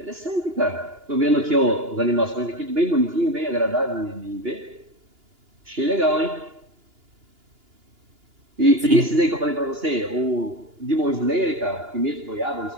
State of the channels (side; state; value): left; late; 2.9 ms